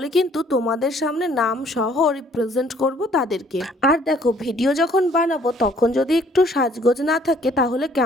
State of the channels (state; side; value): normal; both; correlation 0.60